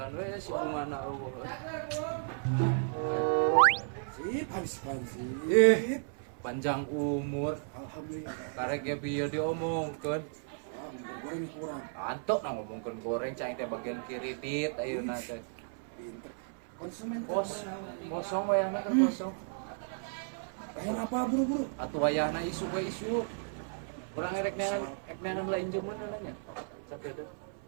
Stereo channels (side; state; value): left; silent; 55 dB below the other